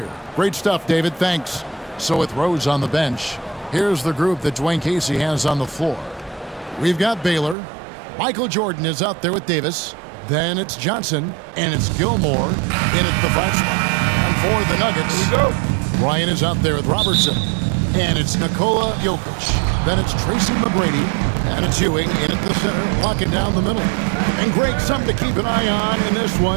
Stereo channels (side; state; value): left; drops out; at 7.6 s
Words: Great stuff, David. Thanks. So with Rose on the bench, here's the group that Dwayne Casey has on the floor. We've got Baylor. Michael Jordan is out there with Davis. Then it's Johnson, and it's Gilmore in at the 5 spot. And for the Nuggets, Here we go. Ryan is out there with Robertson. And it's Nikola Jokic. Then it's Tracy McGrady. And it's Ewing in at the center, locking down the middle. And Greg, something to keep an eye on in this